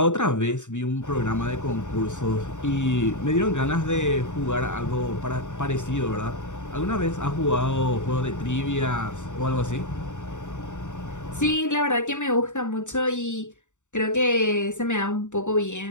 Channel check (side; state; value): right; late; 0.85 ms